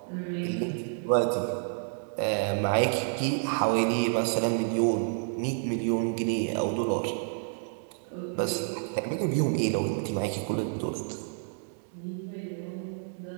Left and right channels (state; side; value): silent; left; digital silence